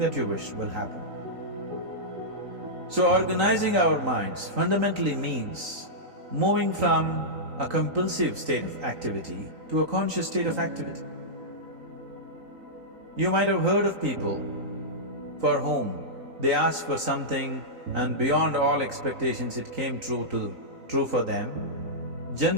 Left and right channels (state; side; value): late; left; 3.9 ms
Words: you wish will happen. So organizing our minds fundamentally means moving from a compulsive state of activity to a conscious state of activity. You might have heard of people for whom they asked for something and beyond all expectations it came true for them.